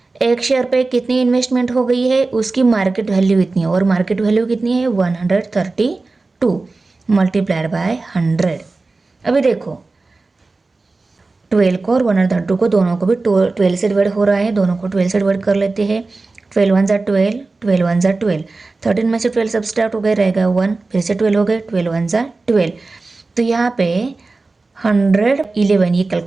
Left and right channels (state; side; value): quieter; left; 3.6 dB